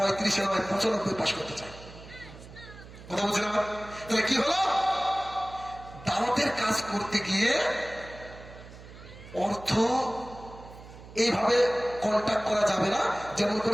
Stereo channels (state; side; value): noise; right; hum, 17 dB below the sound